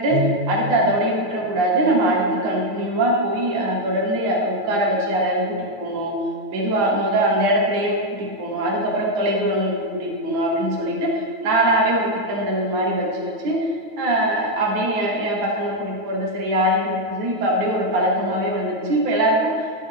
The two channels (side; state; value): left; late; 9.2 ms